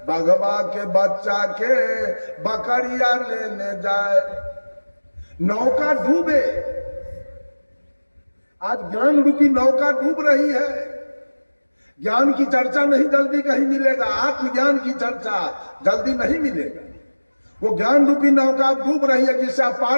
बगवा के बच्चा के बकरिया लेने जाए। नौका डूबे, आज ज्ञान रूपी नौका डूब रही है। ज्ञान की चर्चा नहीं जल्दी कहीं मिलेगा, आत्मज्ञान की चर्चा जल्दी नहीं मिलेगा। वो ज्ञान रूपी नौका डूब रही है, जिससे आप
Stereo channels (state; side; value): inverted; both; correlation -1.00